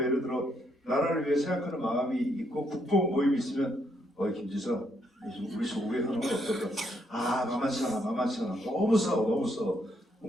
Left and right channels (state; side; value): normal; both; correlation 0.74